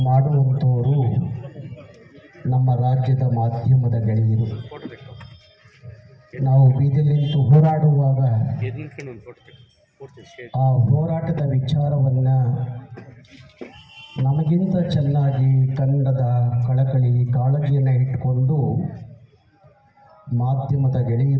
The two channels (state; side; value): identical; both; correlation 1.00